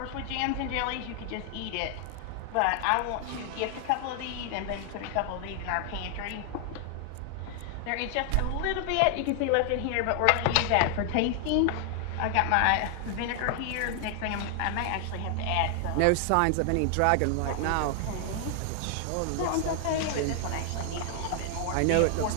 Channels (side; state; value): both; different; correlation 0.00